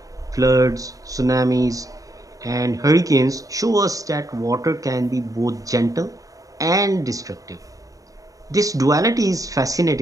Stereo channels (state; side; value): late; left; 0.17 ms